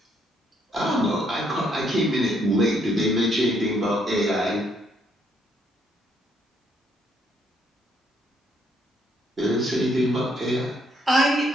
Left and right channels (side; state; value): both; normal; correlation 0.70